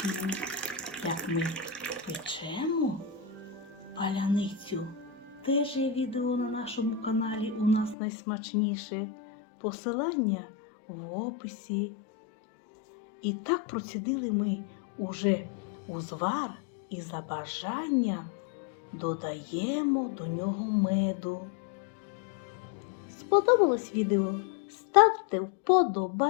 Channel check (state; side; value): drops out; right; at 8.0 s